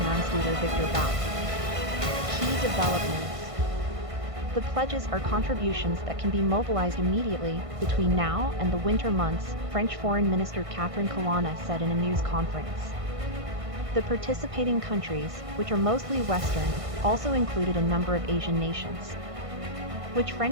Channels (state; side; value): late; left; 1.5 ms